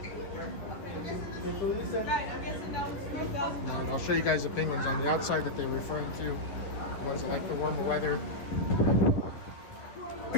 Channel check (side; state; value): right; late; 11 ms